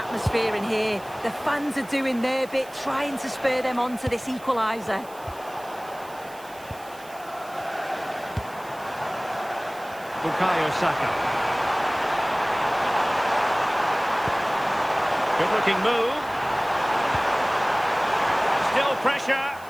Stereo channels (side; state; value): right; noise; hiss, 22 dB below the sound